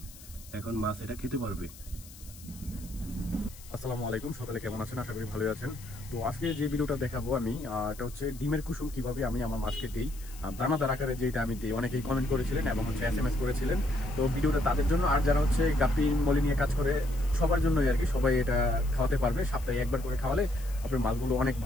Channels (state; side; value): noise; left; hiss, 19 dB below the sound